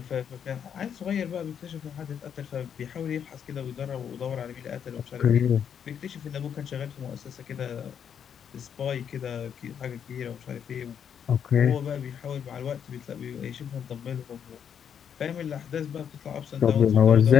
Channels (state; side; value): quieter; right; 8.1 dB